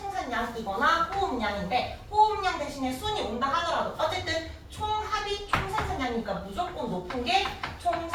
호흡량인데 호흡량 대신에 순이 온다 하더라도 어쨌든 총합이 총생산량이니까 무조건 높은 게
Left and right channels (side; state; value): both; identical; correlation 1.00